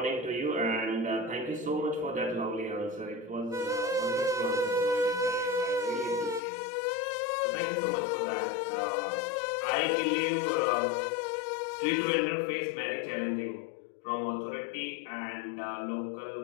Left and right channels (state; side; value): drops out; right; at 6.4 s